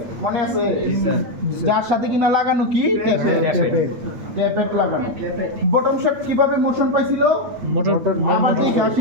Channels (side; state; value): left; late; 8.7 ms